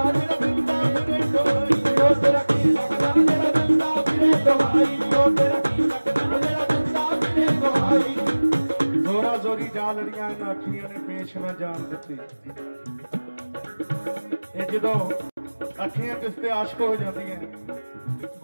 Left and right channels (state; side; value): inverted; both; correlation -1.00